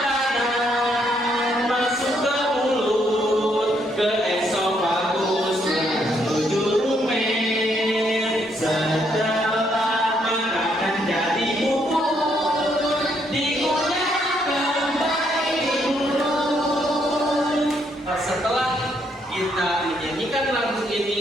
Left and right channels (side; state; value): both; normal; correlation 0.73